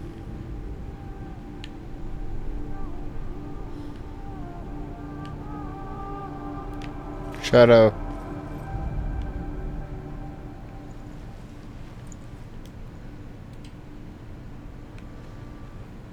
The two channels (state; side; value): identical; both; correlation 1.00